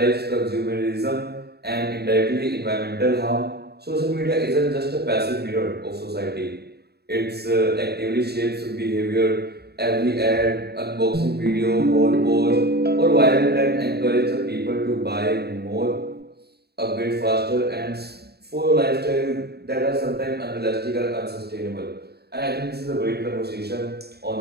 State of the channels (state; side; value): late; left; 0.47 ms